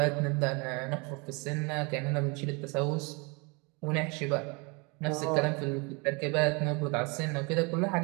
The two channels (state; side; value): quieter; left; 30.0 dB